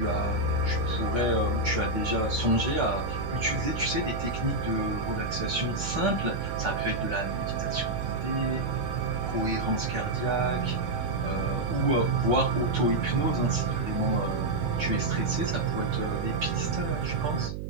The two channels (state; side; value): noise; right; hum, 6 dB below the sound